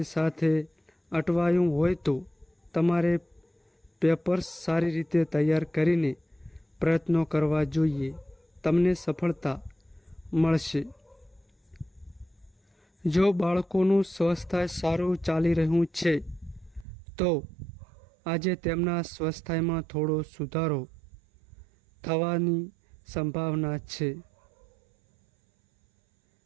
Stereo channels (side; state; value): left; drops out; at 16.9 s